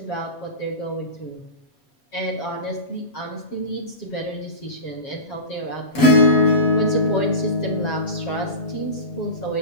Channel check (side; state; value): right; late; 7.8 ms